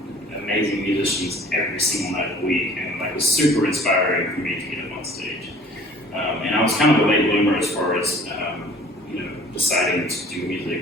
amazing musicians every single night of the week, and it was super inspiring for me to get up on stage. And I was kind of a late bloomer as far as deciding to do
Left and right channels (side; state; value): both; normal; correlation 0.50